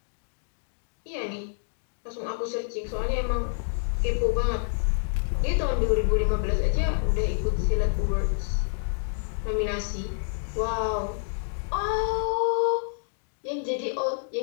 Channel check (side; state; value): right; silent; digital silence